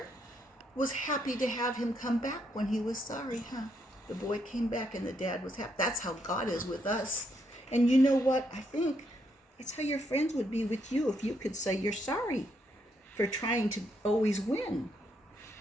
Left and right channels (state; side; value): normal; both; correlation 0.76